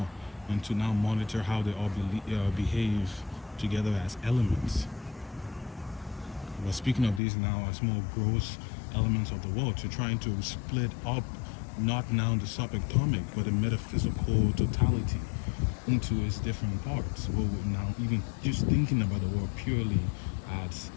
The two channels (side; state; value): right; drops out; at 7.2 s